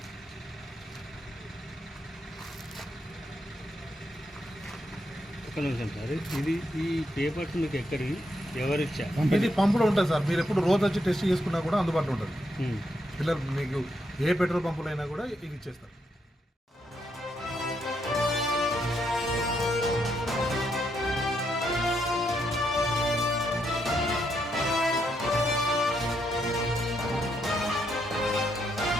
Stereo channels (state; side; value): normal; both; correlation 0.79